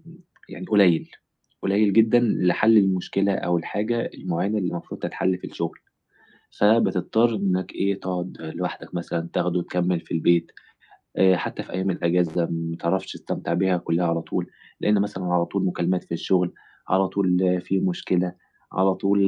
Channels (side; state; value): both; identical; correlation 1.00